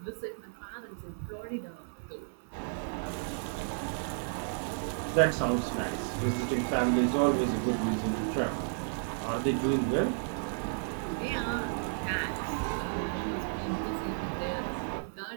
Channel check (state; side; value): silent; left; digital silence